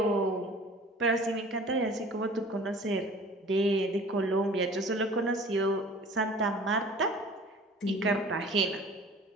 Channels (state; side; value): normal; both; correlation 0.46